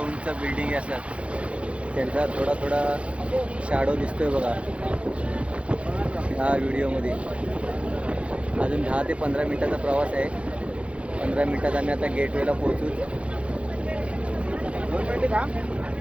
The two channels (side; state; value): left; late; 0.061 ms